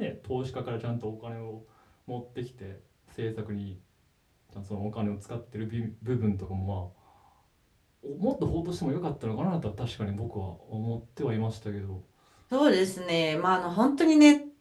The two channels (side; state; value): both; identical; correlation 1.00